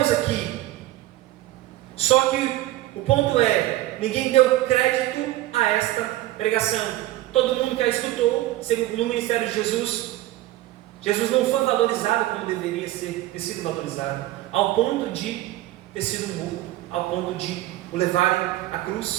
aqui? Só que o ponto é, ninguém deu crédito a esta pregação. Todo mundo que a escutou, no ministério de Jesus, Jesus não foi valorizado como deveria ter sido valorizado, ao ponto de ter sido morto, ao ponto de o levarem à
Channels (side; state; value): left; quieter; 15.9 dB